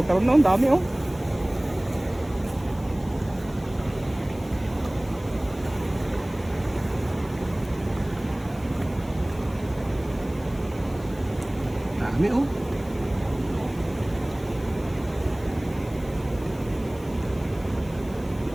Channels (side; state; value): left; noise; hiss, 23 dB below the sound